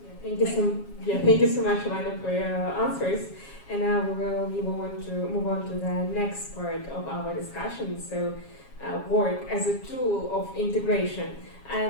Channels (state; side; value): late; right; 7.3 ms